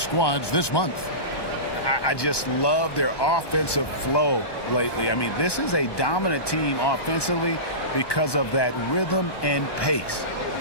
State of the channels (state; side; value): late; right; 1.2 ms